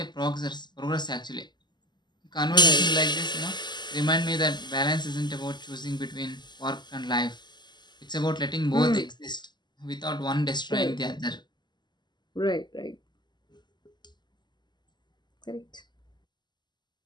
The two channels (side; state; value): right; late; 0.21 ms